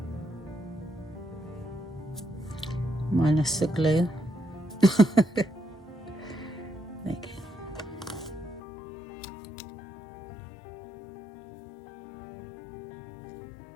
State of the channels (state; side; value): drops out; right; at 8.6 s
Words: Minus the glue. There you go.